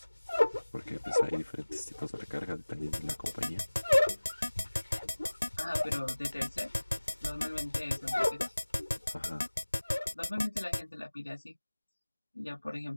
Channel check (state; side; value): inverted; both; correlation -1.00